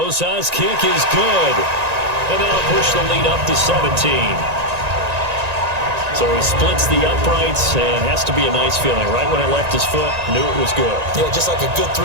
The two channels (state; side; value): late; left; 1.9 ms